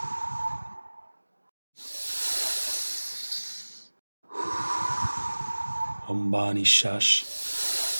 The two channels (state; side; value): inverted; both; correlation -1.00